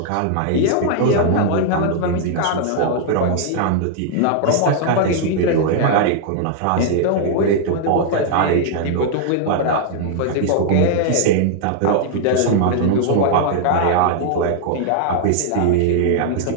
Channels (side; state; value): both; different; correlation -0.01